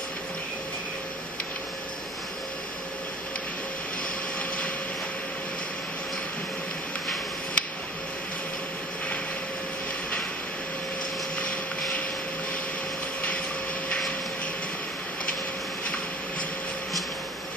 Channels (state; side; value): normal; both; correlation 0.45